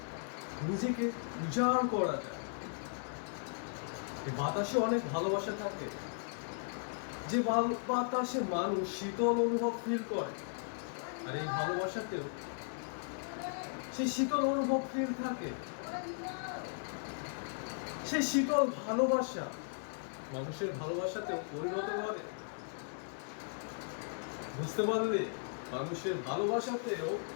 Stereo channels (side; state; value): right; silent; digital silence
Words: নিজেকে উজাড় করা যায়। বাতাসে অনেক ভালোবাসা থাকে, যে বাতাসে মানুষ শীতল অনুভব ফিল করে, আর এই ভালোবাসাতেও সেই শীতল অনুভব ফিল থাকে। সেই শীতল ভালোবাসা মানুষের ভালোবাসাতেও পরিণত করে। বুঝতে পারলে, মানুষের ভালোবাসাতেও